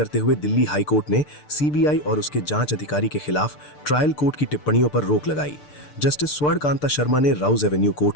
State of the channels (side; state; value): right; late; 6.7 ms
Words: हुए दिल्ली हाईकोर्ट ने सीबीआई और उसके जांच अधिकारी के खिलाफ ट्रायल कोर्ट की टिप्पणियों पर रोक लगाई। जस्टिस स्वर्ण कांता शर्मा ने राउज एवेन्यू कोर्ट